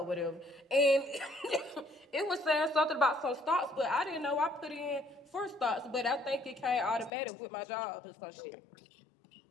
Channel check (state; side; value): drops out; right; at 7.1 s